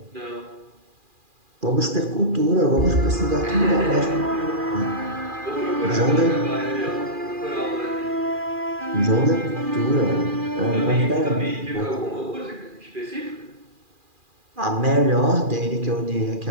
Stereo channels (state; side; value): late; left; 2.4 ms